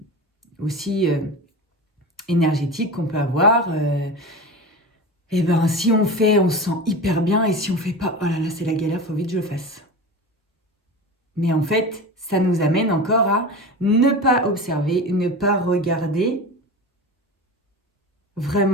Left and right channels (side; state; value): both; normal; correlation 0.29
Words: aussi énergétiques qu'on peut avoir. Et ben si on fait, on se sent hyper bien, et si on fait pas, oh là là, c'est la galère, faut vite que je le fasse. Mais en fait, ça nous amène encore à ne pas observer, ne pas regarder